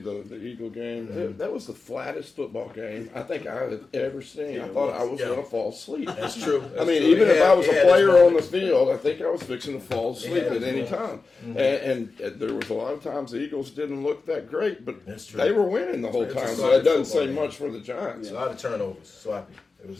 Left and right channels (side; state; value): right; quieter; 4.1 dB